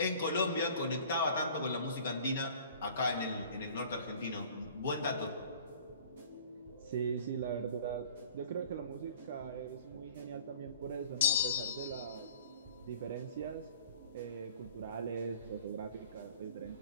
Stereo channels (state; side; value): inverted; both; correlation -0.47